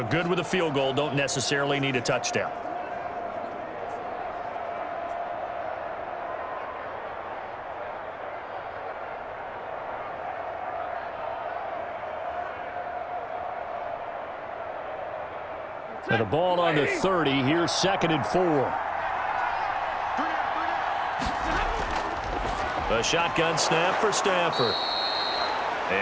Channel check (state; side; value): identical; both; correlation 1.00